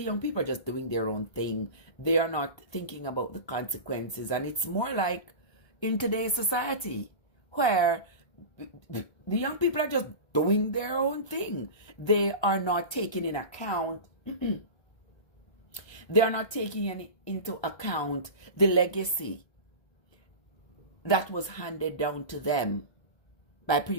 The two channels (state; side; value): late; right; 1.3 ms